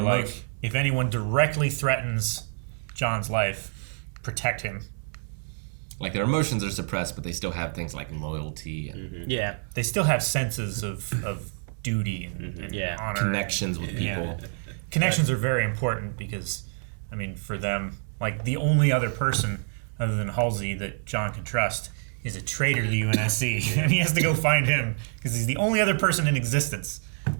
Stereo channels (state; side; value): silent; left; 60 dB below the other